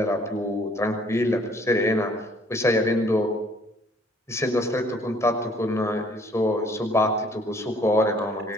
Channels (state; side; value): normal; both; correlation 0.60